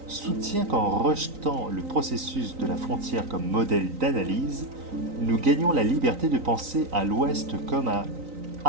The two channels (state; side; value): late; left; 3.9 ms